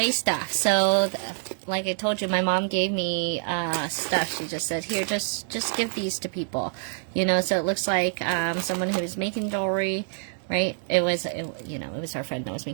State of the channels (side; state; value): left; silent; 61 dB below the other